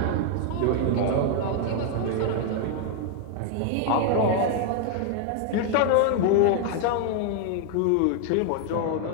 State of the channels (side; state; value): both; different; correlation 0.00